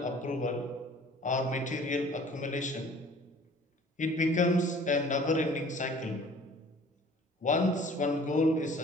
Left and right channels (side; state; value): both; normal; correlation 0.50